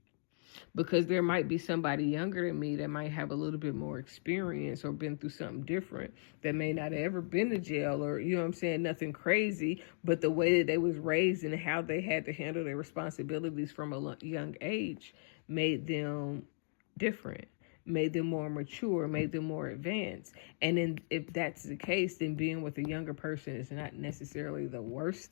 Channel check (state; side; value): silent; right; digital silence